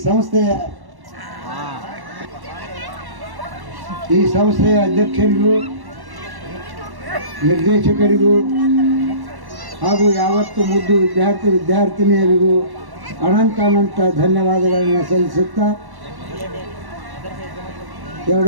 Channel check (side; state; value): left; late; 1.1 ms